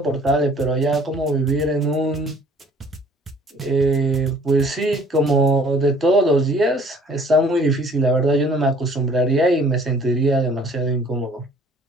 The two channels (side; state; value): both; normal; correlation 0.55